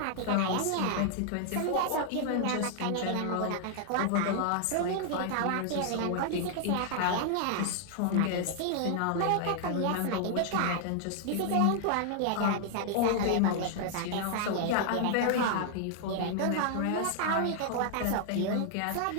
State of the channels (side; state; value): both; different; correlation 0.00